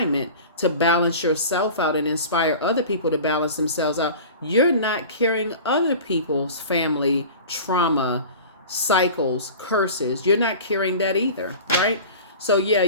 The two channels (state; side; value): inverted; both; correlation -0.38